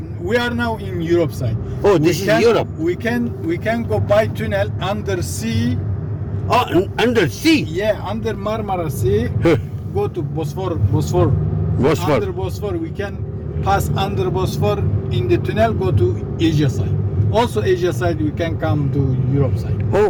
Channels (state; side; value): identical; both; correlation 1.00